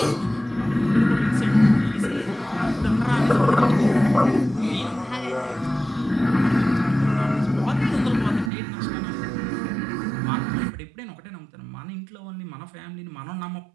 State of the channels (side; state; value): left; drops out; at 8.5 s